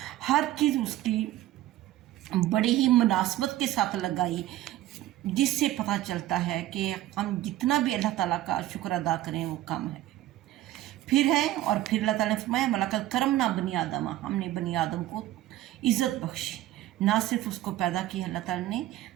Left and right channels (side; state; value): left; quieter; 14.7 dB